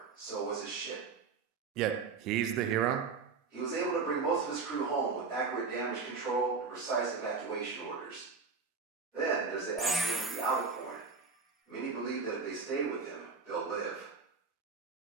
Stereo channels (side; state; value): left; quieter; 4.9 dB